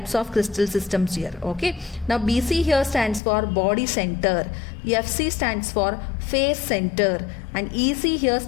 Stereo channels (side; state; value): right; drops out; at 3.2 s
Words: of crystal systems here. Okay. Now BC here stands for body center. FC stands for face center. And EC here